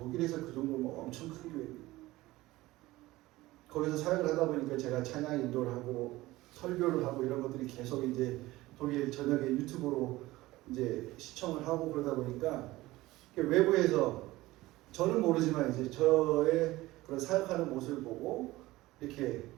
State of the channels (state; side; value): quieter; left; 18.3 dB